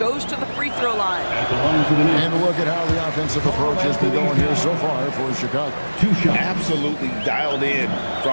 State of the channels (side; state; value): both; inverted; correlation -1.00